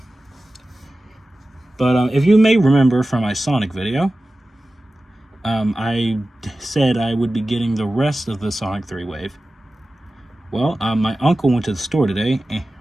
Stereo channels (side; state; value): both; normal; correlation 0.95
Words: But if you may remember from my Sonic video, I said I would be getting the rest of the Sonic 3 wave. Well, my uncle went to the store today,